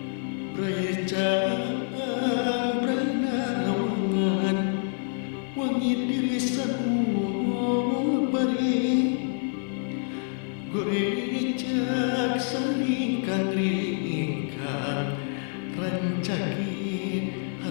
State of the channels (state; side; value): silent; right; 60 dB below the other